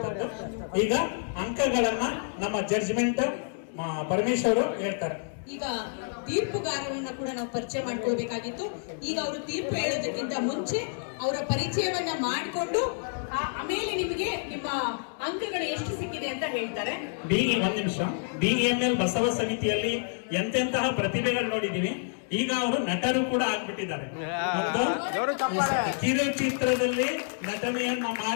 ಈಗ ಅಂಕಗಳನ್ನ ನಮ್ಮ ಜಡ್ಜ್ಮೆಂಟ್ ಪರಮೇಶ್ವರ್ ಹೇಳ್ತಾರೆ. ಈಗ ತೀರ್ಪುಗಾರರನ್ನ ಕೂಡ ನಾವು ಪರಿಚಯ ಮಾಡ್ಕೊಳ್ಬೇಕಾಗಿತ್ತು. ಈಗ ಅವರು ತೀರ್ಪು ಹೇಳೋದಕ್ಕಿಂತ ಮುಂಚೆ ಅವರ ಪರಿಚಯವನ್ನ ಮಾಡಿಕೊಂಡು ಆಮೇಲೆ ನಿಮಗೆ ನಿಮ್ಮ ಅಂಕಗಳು ಎಷ್ಟು ಸಿಕ್ಕಿದೆ ಅಂತ ಹೇಳ್ತಾರೆ. ಒಂದ್ ನಿಮಿಷ. BEML ಬಸವ ಸಮಿತಿಯಲ್ಲಿ ಎಂತೆಂತಹ ಪ್ರತಿಭೆಗಳು ನೋಡಿದೀವಿ. ಈಗ ಅವರು ನಟರು ಕೂಡ ಆಗ್ಬಿಟ್ಟಿದ್ದಾರೆ. ಕಿರುಚಿತ್ರದಲ್ಲಿ ನಟನೆಯನ್ನ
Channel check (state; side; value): silent; right; 59 dB below the other